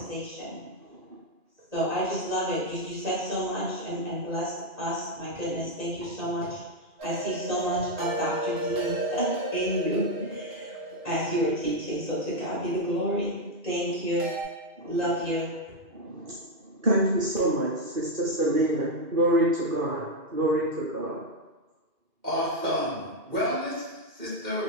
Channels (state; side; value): late; left; 2.4 ms